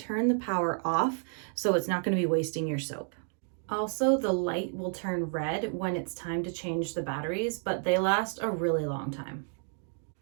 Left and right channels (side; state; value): left; silent; 57 dB below the other